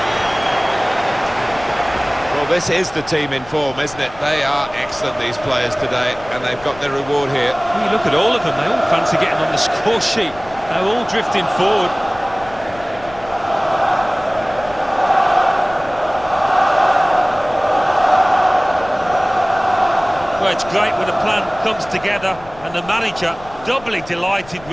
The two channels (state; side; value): noise; left; rumble, 20 dB below the sound